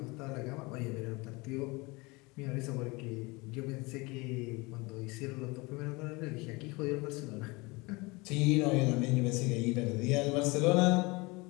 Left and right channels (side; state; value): right; quieter; 25.2 dB